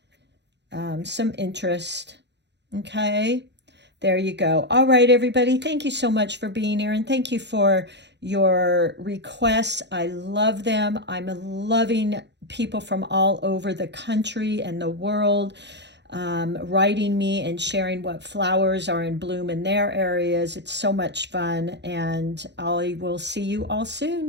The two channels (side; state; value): left; late; 0.51 ms